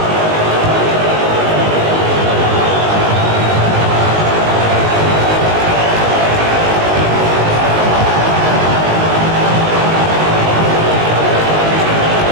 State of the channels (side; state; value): left; late; 19 ms